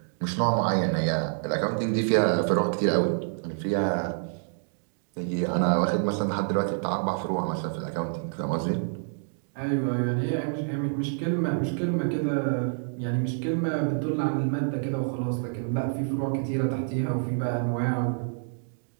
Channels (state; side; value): silent; left; digital silence